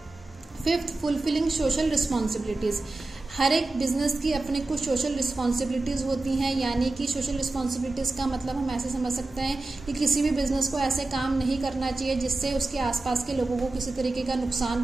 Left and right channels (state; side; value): quieter; left; 3.1 dB